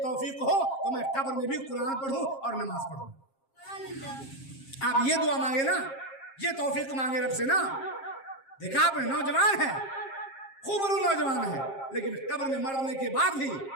तौफीक हो तो मैं कब्र में भी कुरान पढ़ूँ और नमाज पढ़ूँ। आप ये दुआ मांगे ना, ये तौफीक मांगे रब से ना। देखा आपने, नौजवान है, खूबरू नौजवान है, लेकिन कब्र में मरने के बाद भी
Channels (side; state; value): right; late; 7.5 ms